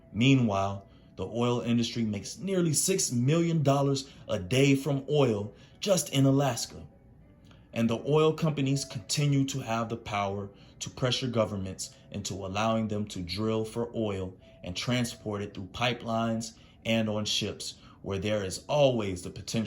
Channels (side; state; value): both; identical; correlation 1.00